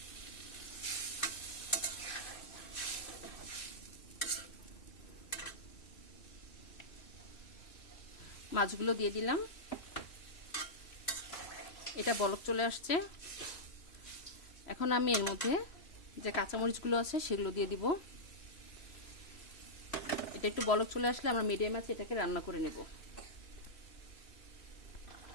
মাছগুলো দিয়ে দিলাম। এটা বলক চলে আসছে। এখন আমি এর মধ্যে যে কাঁচামরিচগুলো আছে সেগুলো দিয়ে দিব। এটা একটু বলক চলে আসলে আমরা মিডিয়াম আছে এটাকে রান্না করে নেব।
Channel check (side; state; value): right; late; 3.1 ms